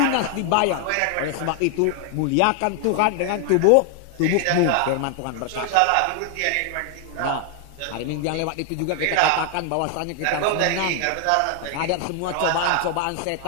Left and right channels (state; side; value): different; both; correlation 0.00